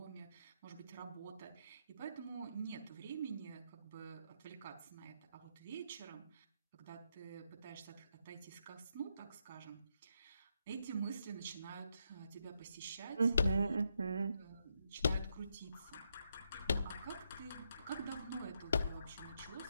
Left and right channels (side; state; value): both; inverted; correlation -0.80